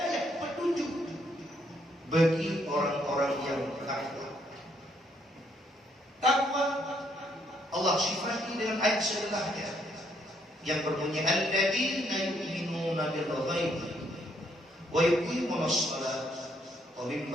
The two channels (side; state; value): both; normal; correlation 0.72